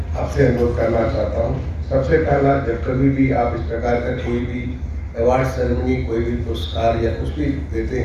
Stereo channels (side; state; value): both; identical; correlation 1.00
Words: आपसे अनुरोध करना चाहता हूं। सबसे पहला, जब कभी भी आप इस प्रकार का कोई भी अवार्ड सेरेमनी, कोई भी पुरस्कार या कुछ भी देते